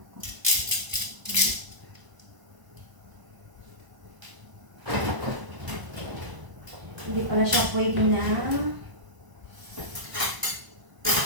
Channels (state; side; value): late; left; 1.0 ms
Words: Hindi pala siya pwede na